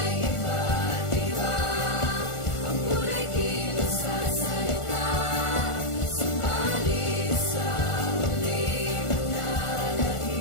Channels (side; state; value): right; late; 1.4 ms